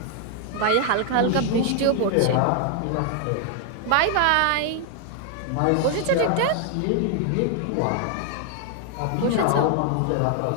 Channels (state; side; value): different; both; correlation 0.00